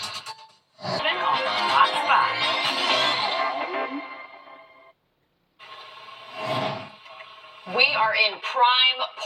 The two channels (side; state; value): both; identical; correlation 1.00